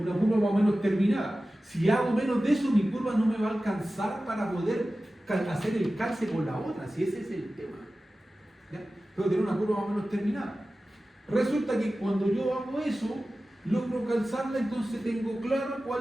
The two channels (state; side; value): normal; both; correlation 0.95